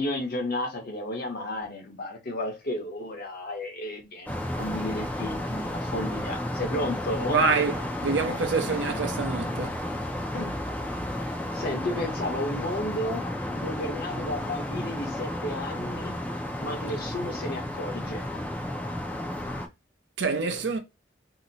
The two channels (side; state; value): both; normal; correlation 0.38